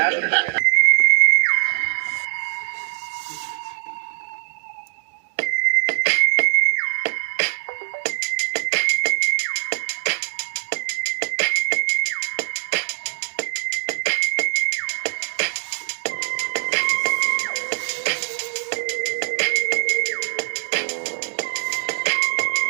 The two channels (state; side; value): silent; left; 55 dB below the other